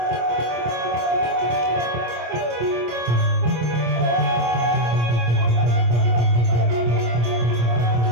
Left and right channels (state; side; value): late; left; 25 ms